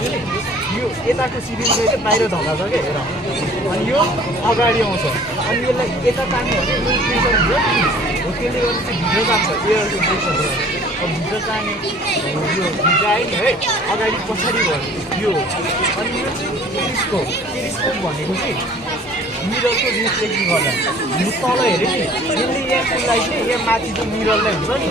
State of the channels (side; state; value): both; normal; correlation 0.51